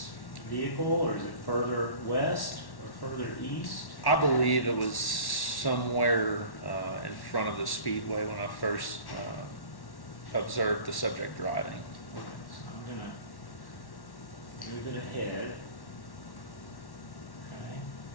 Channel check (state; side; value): late; right; 1.1 ms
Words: vehicle, or is it further west or further east? I believe it was somewhere in front of the Speedway when I first observed the subject driving. Okay, so I'm going to move it ahead. Okay.